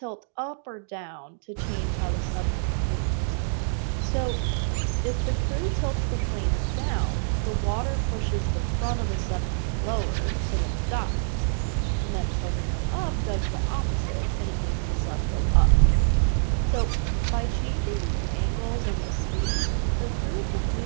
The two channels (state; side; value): silent; left; digital silence